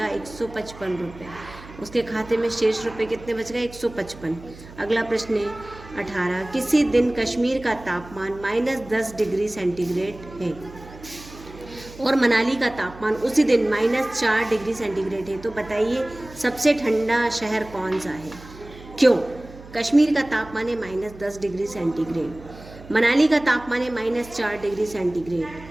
155 रुपये। उसके खाते में शेष रुपए कितने बच गए, 155। अगला प्रश्न है 18, किसी दिन कश्मीर का तापमान -10 डिग्री सेंटीग्रेड है और मनाली का तापमान उसी दिन -4 डिग्री सेंटीग्रेड है, तो बताइए सबसे ठंडा शहर कौन सा है। क्यों, कश्मीर का तापमान है -10 डिग्री सेंटीग्रेड, मनाली का तापमान है -4 डिग्री सेंटीग्रेड।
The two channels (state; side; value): noise; right; hum, 18 dB below the sound